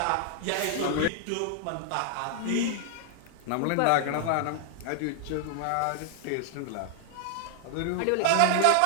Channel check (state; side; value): different; both; correlation -0.01